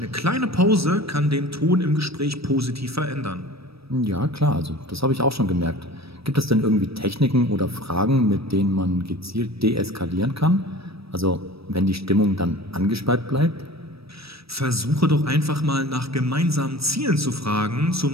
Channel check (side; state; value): left; late; 0.77 ms